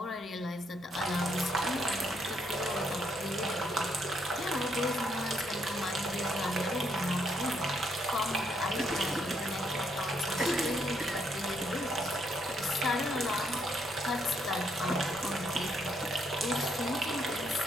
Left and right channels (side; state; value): both; normal; correlation 0.73